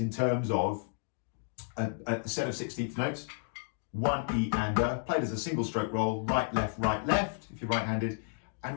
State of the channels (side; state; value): right; silent; digital silence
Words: terms of a set of 16th notes. 1 E and played as a single stroke roll, right, left, if you're right-handed.